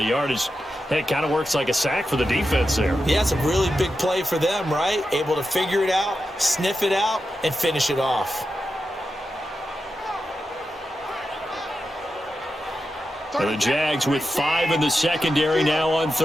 yardage. It kind of works like a sack for the defense there. Yeah, it's a really big play for them, right? Able to figure it out, sniff it out, and finish it off. And the Jags with 5 in the secondary now on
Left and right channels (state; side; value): normal; both; correlation 0.89